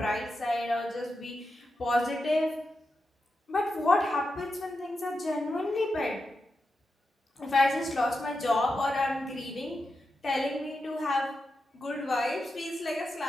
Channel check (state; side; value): normal; both; correlation 0.88